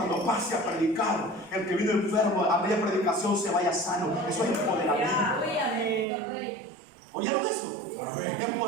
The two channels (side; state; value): left; drops out; at 6.1 s